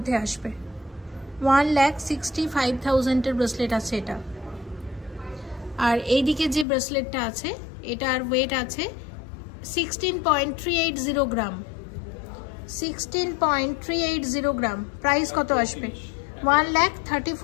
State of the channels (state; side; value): drops out; right; at 6.7 s